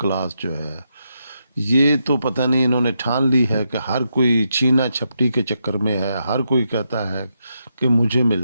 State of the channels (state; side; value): inverted; both; correlation -0.83